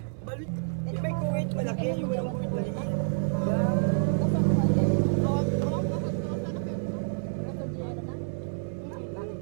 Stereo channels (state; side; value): silent; left; 59 dB below the other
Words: Balit. Yung may kuwait malaki, yung walang kuwait maliit.